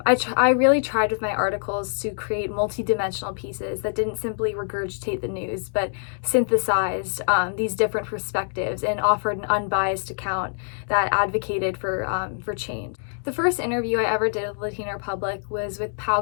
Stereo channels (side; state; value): right; silent; digital silence